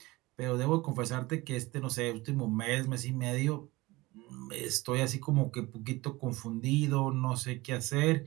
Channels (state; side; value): quieter; left; 21.0 dB